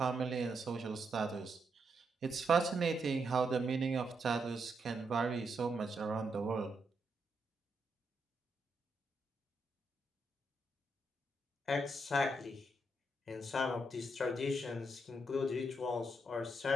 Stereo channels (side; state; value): both; normal; correlation 0.81